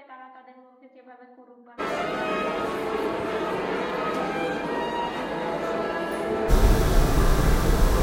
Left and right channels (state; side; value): identical; both; correlation 1.00